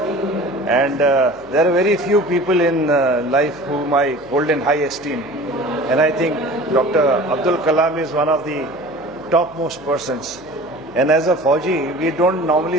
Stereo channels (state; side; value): noise; left; hum, 27 dB below the sound